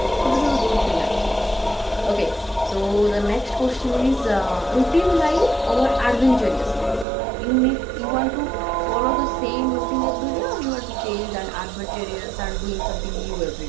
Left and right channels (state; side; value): drops out; left; at 7.1 s